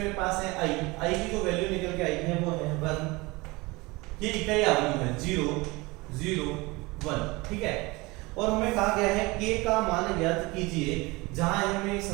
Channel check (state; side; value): quieter; left; 23.6 dB